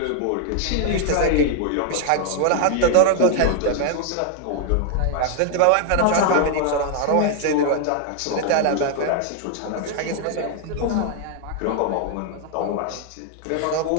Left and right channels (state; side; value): different; both; correlation 0.00